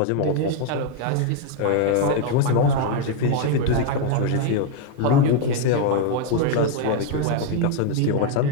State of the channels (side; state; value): both; different; correlation 0.00